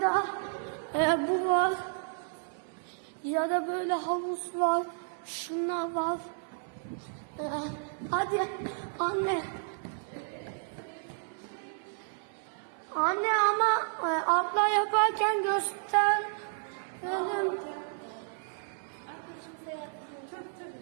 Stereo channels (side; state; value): left; silent; 57 dB below the other